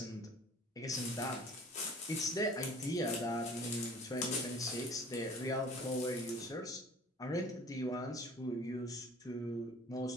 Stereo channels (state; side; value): normal; both; correlation 0.48